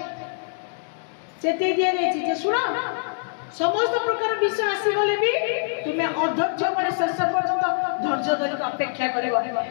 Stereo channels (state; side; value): silent; right; 62 dB below the other